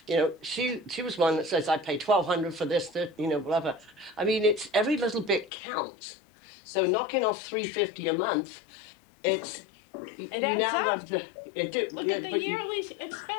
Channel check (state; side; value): drops out; right; at 5.5 s